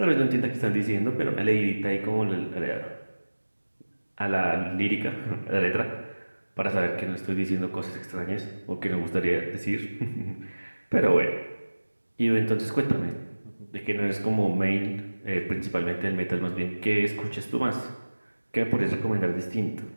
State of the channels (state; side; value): inverted; both; correlation -1.00